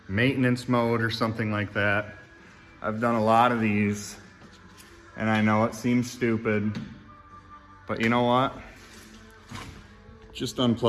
maintenance mode or something like that. I've done a lot of these and I know it seems stupid, but you know what? Just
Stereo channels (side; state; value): both; identical; correlation 1.00